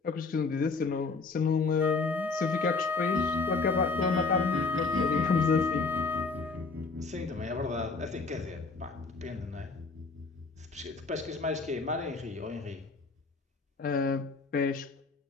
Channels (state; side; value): quieter; right; 4.2 dB